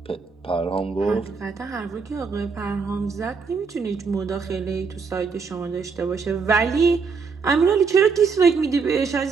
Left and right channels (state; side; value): quieter; left; 5.2 dB